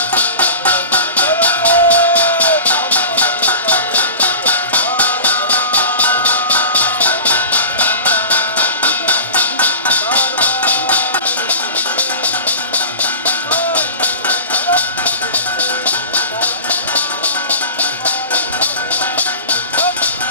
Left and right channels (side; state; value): both; inverted; correlation -0.34